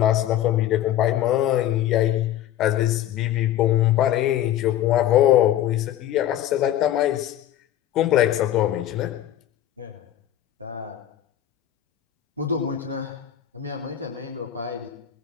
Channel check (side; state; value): right; quieter; 11.9 dB